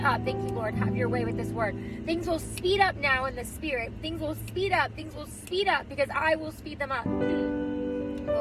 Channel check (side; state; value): both; identical; correlation 1.00